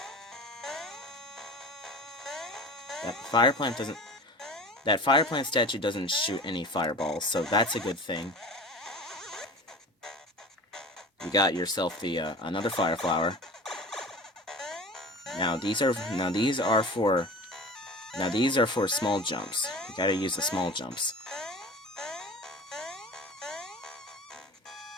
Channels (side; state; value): both; normal; correlation 0.37